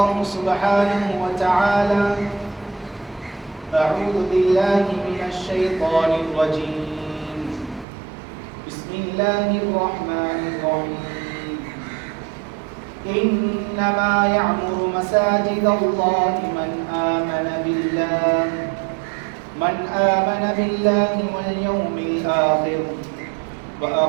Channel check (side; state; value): left; drops out; at 7.9 s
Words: سبحانه وتعالى أعوذ بالله من الشيطان الرجيم بسم الله الرحمن الرحيم إنما يعمر مساجد الله من آمن بالله واليوم الآخر